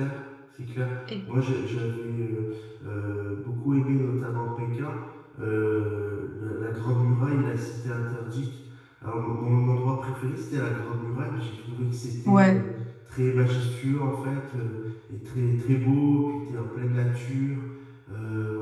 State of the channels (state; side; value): identical; both; correlation 1.00